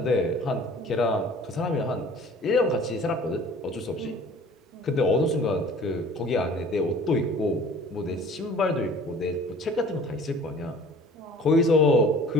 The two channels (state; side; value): normal; both; correlation 0.48